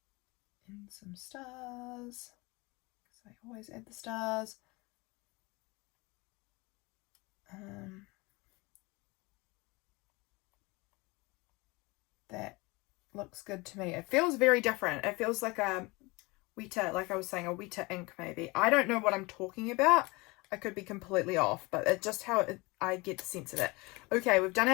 And some stars. Because I always add the stars. That looks good to me. It feels very different. It feels like a wetter, like I was saying, a wetter ink maybe. I don't know what I'm talking about. I could be completely off, but it's just how I get the sense of it. Okay, we've done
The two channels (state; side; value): quieter; right; 24.7 dB